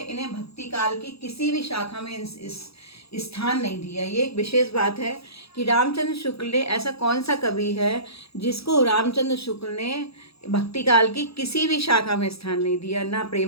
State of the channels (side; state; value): right; late; 0.77 ms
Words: भक्ति काल की किसी भी शाखा में इस स्थान नहीं दिया। ये एक विशेष बात है कि रामचंद्र शुक्ल ने, ऐसा कौन सा कवि है जिसको रामचंद्र शुक्ल ने भक्ति काल की किसी भी शाखा में स्थान नहीं दिया, ना